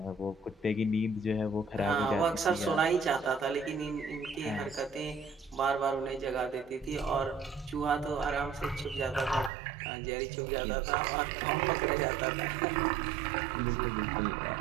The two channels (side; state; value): left; drops out; at 9.5 s